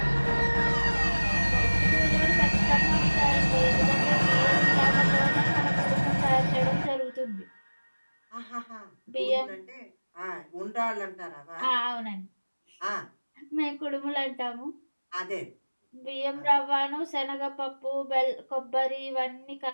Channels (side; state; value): both; inverted; correlation -1.00